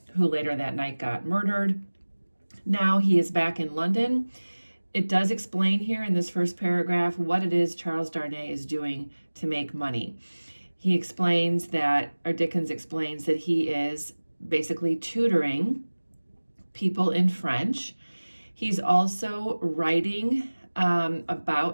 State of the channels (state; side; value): inverted; both; correlation -1.00